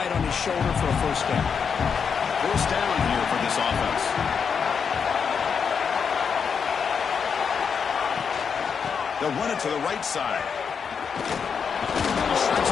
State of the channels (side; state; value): right; quieter; 6.4 dB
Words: on his shoulder for a first down. First down here for this offense. They'll run it to the right side. He shreds